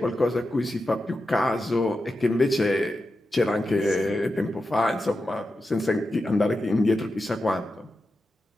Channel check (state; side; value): normal; both; correlation 0.90